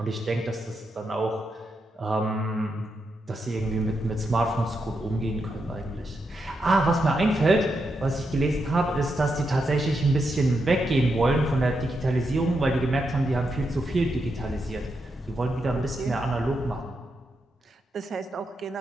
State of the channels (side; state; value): both; normal; correlation 0.84